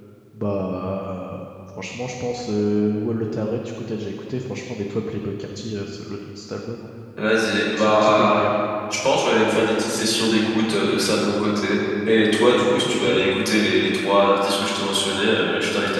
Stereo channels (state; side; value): identical; both; correlation 1.00